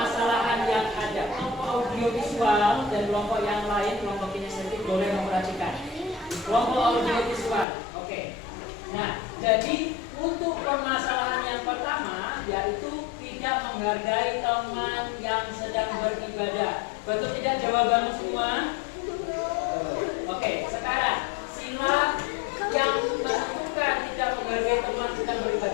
yang ada. Kelompok audiovisual dan kelompok yang lain, kelompok kinestetik boleh memperhatikan. Kelompok audiovisual, oke. Nah, jadi untuk permasalahan yang pertama yaitu tidak menghargai teman yang sedang beribadah. Betul tidak jawabanmu semua? Oke, sekarang sila yang menentukan tidak menghargai teman sedang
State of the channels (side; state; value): right; drops out; at 7.7 s